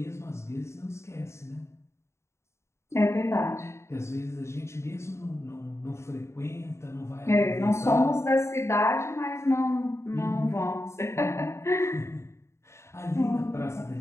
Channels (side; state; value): right; late; 0.13 ms